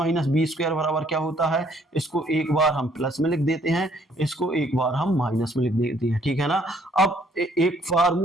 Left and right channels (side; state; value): both; normal; correlation 0.64